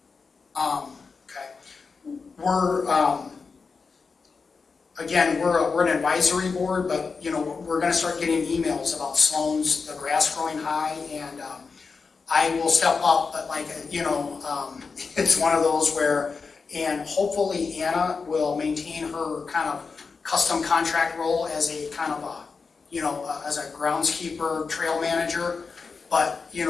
Okay. We're an advisory board, but we're going to start getting emails about Sloan's, the grass growing high, and I will step up, but it's one of those where, and hopefully Anna will maintain her kind of custom contract role as a kind of as a groundskeeper, trail manager. But the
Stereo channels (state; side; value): quieter; right; 4.9 dB